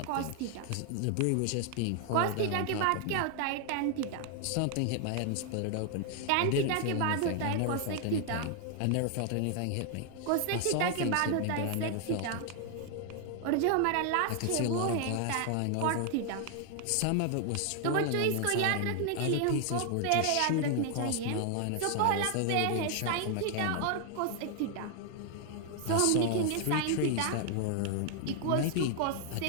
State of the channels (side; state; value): both; different; correlation 0.00